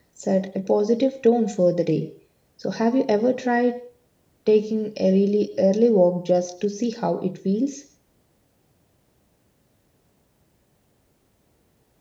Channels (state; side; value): identical; both; correlation 1.00